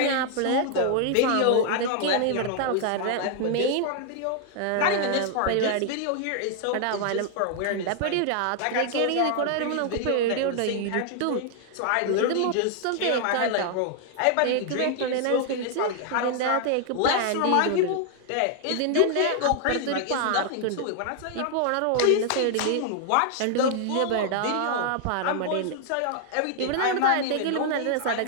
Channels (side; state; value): both; different; correlation 0.00